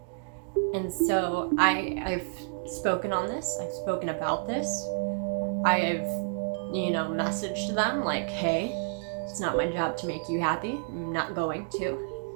And so I've spoken on this. I've spoken about this. I've, messaged them like, hey, it's not my job to make you happy. I'm not going to.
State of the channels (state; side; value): silent; left; digital silence